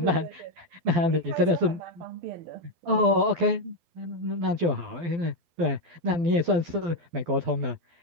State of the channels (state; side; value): late; left; 12 ms